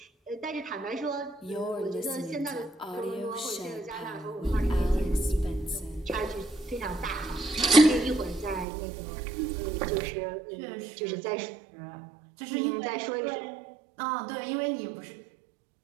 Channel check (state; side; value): drops out; left; at 8.7 s